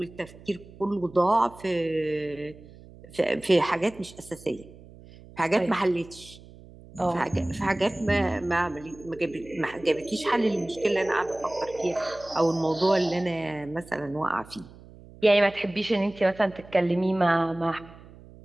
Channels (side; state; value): right; noise; hum, 20 dB below the sound